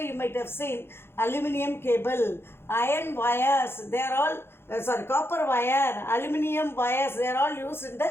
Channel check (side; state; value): right; late; 0.11 ms